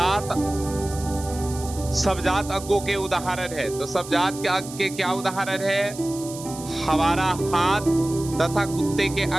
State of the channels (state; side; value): noise; right; hiss, 14 dB below the sound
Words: सबजात अंगों के उदाहरण है, तो सबजात के अंग के क्या उदाहरण है? हमारा हाथ तथा कुत्ते के